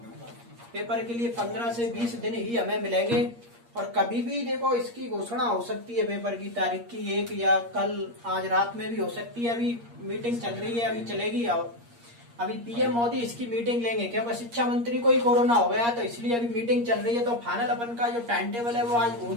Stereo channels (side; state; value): left; late; 8.5 ms